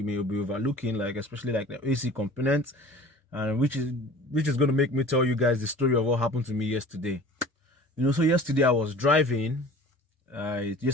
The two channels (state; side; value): normal; both; correlation 0.44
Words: may be overlooking, like especially like the AC components, and which is going to make me tell you guys the story of what happened to me yesterday. So yesterday I was driving.